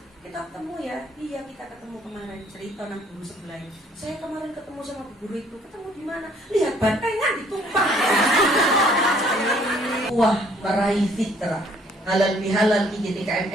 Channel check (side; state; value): both; normal; correlation 0.61